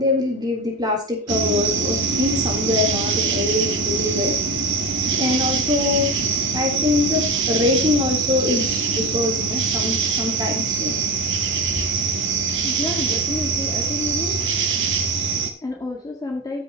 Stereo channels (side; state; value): both; normal; correlation 0.23